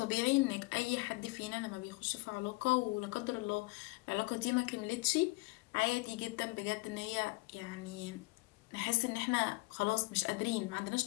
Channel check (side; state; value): right; quieter; 25.6 dB